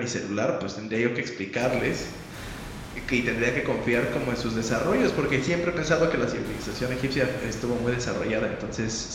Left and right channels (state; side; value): identical; both; correlation 1.00